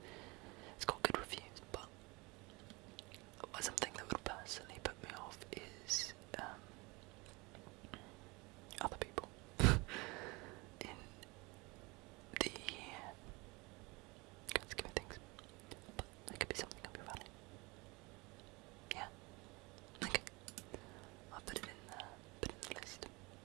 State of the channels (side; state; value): left; quieter; 25.3 dB